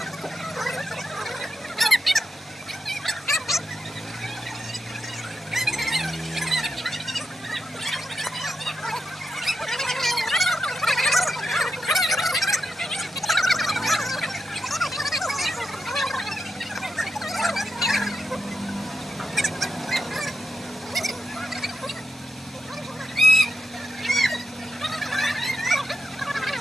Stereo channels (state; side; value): normal; both; correlation 0.87